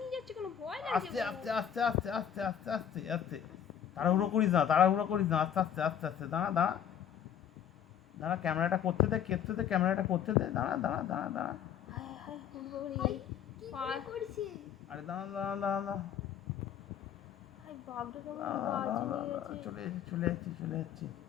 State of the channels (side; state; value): right; quieter; 9.1 dB